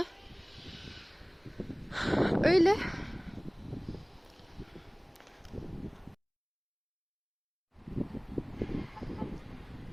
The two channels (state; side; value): identical; both; correlation 1.00